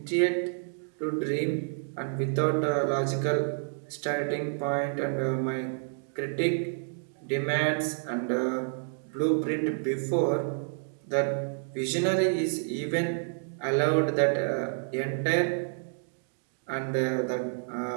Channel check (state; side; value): silent; left; digital silence